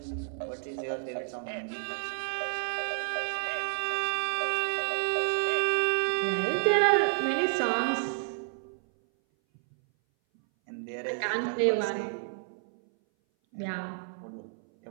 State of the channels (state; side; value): silent; left; 58 dB below the other